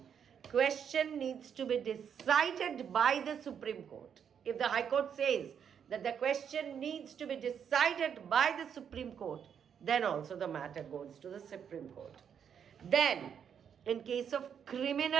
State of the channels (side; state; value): left; quieter; 7.9 dB